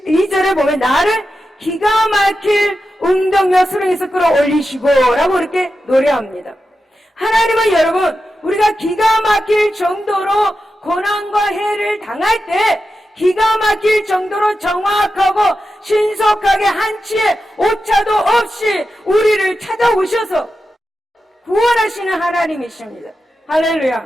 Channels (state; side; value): normal; both; correlation 0.90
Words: 보면 나를 기가 막힐 웅덩이와 수렁에서 끌어올리시고 라고 이렇게 노래합니다. 하나님은 여러분, 우리가 기가 막힐 정도로 고난과 해를 당할 때 기가 막힐 정도로 정확하고 신속하게 한치의 오차도 없이 우리를 찾아오셔서 구원하시는 하나님이십니다. 할렐루야.